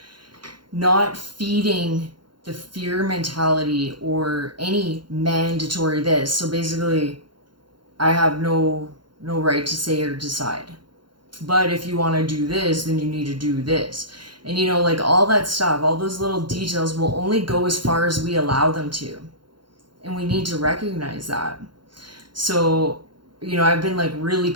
not feeding the fear mentality or any mandatory this. So basically, I have no right to say or decide. But if you want to do this, then you need to do this. And, you know, like all that stuff, all those little details will only go as far as we allow them to. And we need to recognize that. So, you know, I've been like really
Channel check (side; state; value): left; late; 0.72 ms